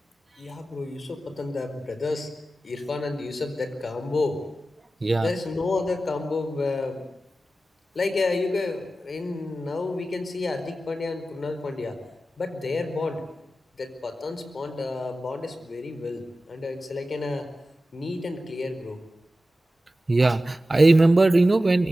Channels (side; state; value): both; normal; correlation 0.94